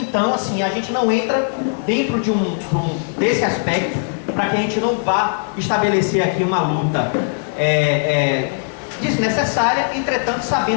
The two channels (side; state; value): right; silent; digital silence